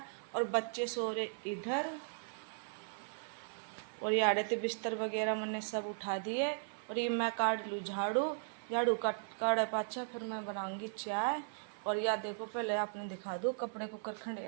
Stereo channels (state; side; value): silent; left; 53 dB below the other